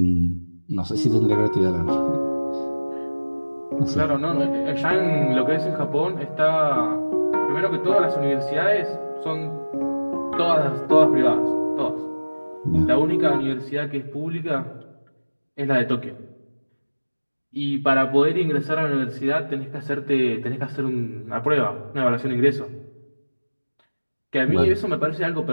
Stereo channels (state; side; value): inverted; both; correlation -1.00